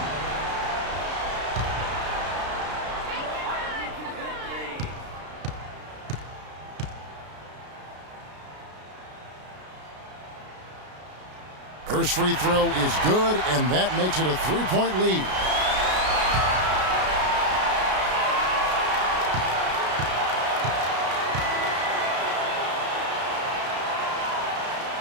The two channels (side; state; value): left; late; 33 ms